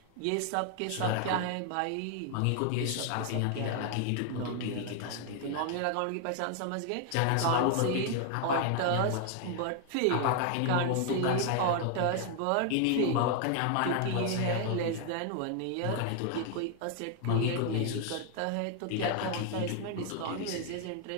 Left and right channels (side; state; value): both; different; correlation 0.00